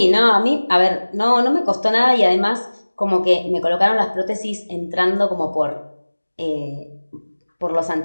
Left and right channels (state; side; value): inverted; both; correlation -1.00